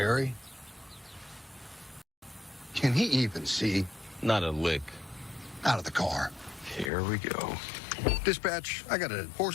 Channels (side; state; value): right; drops out; at 6.9 s